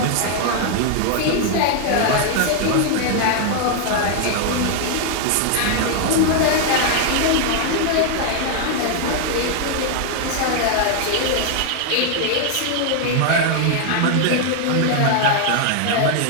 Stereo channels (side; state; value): both; different; correlation 0.00